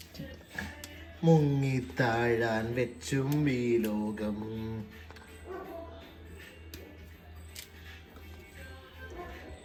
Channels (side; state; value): both; identical; correlation 1.00